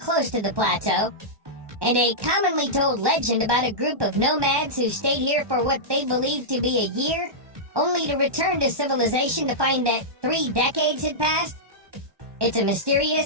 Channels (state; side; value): late; left; 1.2 ms